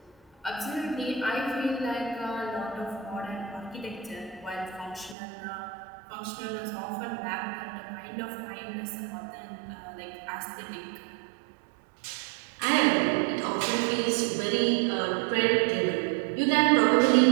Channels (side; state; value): left; drops out; at 5.2 s